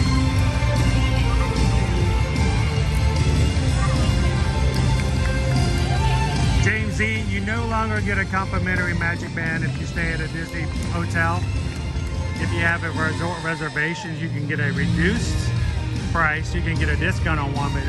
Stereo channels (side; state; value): both; identical; correlation 1.00